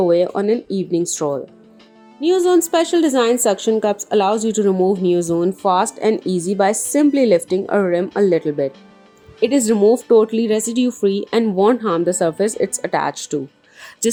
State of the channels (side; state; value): both; identical; correlation 1.00